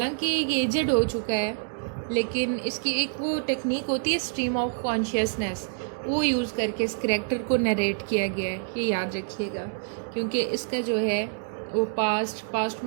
ये एजेड हो चुका है, लेकिन इसकी एक वो टेक्निक होती है स्ट्रीम ऑफ कॉन्शियसनेस, वो यूज़ करके इस करैक्टर को नरेट किया गया है। ये याद रखिएगा, क्योंकि इसका जो है वो पास्ट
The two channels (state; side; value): silent; left; digital silence